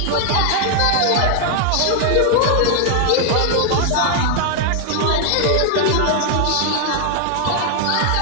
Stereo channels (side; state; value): both; different; correlation 0.00